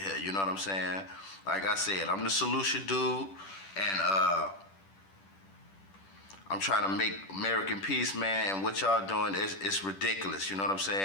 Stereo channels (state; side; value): late; right; 10 ms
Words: You know what I'm saying? Like I said, I'm the solution dude, and I'm trying to make American peace, man, and what y'all doing is ridiculous, you know what I'm